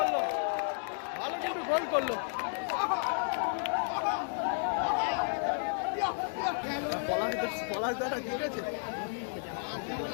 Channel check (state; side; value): silent; right; 56 dB below the other